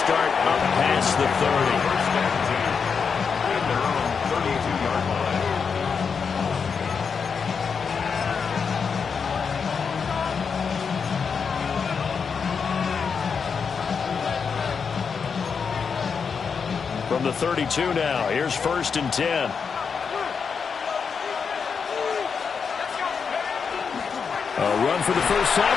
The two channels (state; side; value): quieter; right; 5.9 dB